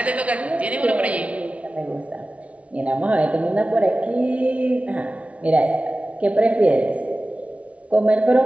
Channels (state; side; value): late; left; 0.064 ms